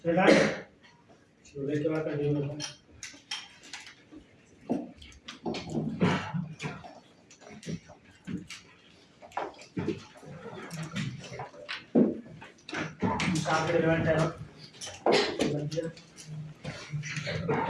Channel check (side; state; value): both; identical; correlation 1.00